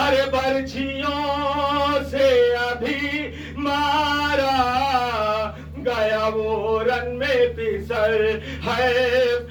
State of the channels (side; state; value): both; identical; correlation 1.00